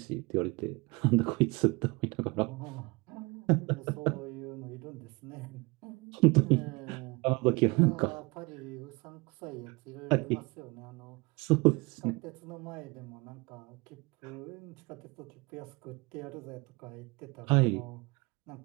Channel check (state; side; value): quieter; left; 26.0 dB